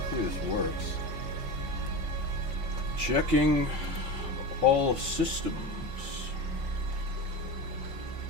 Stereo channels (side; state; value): left; late; 5.6 ms